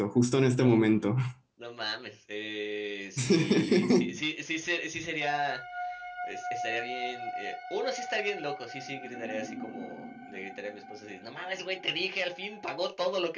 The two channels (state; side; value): identical; both; correlation 1.00